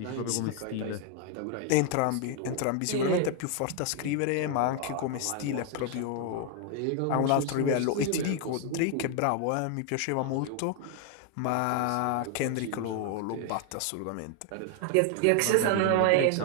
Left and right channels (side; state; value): both; different; correlation 0.00